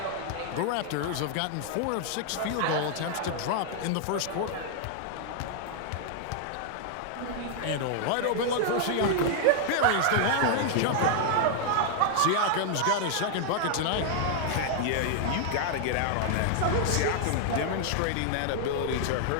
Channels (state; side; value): different; both; correlation 0.00